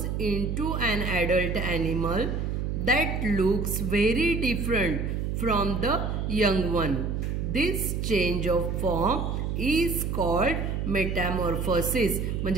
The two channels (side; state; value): right; noise; hum, 1 dB below the sound